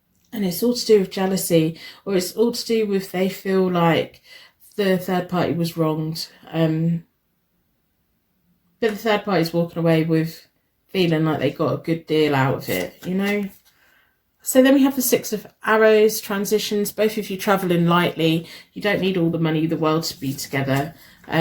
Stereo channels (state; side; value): identical; both; correlation 1.00